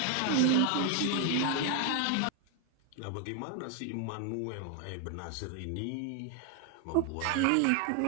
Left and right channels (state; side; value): different; both; correlation 0.01